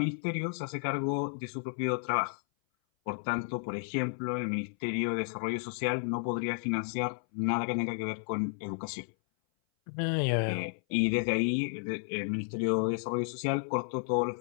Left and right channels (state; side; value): silent; right; 56 dB below the other